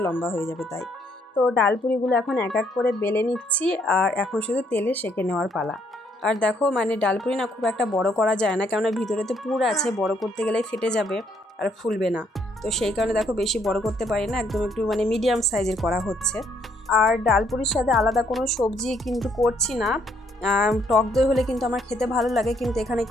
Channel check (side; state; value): both; normal; correlation 0.69